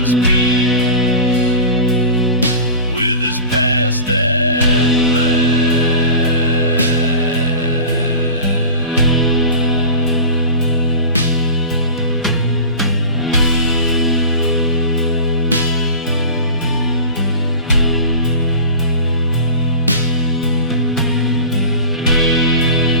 peace with his past at last.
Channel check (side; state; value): both; inverted; correlation -0.35